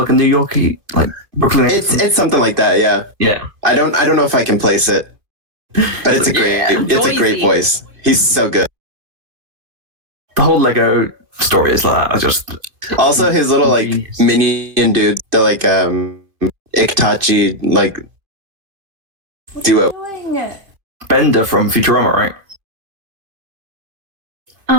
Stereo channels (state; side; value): late; left; 2.5 ms